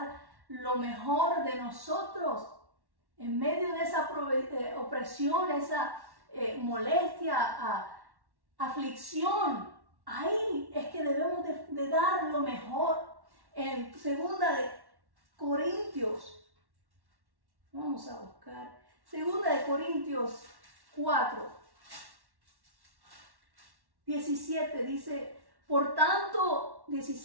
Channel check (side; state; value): left; late; 1.1 ms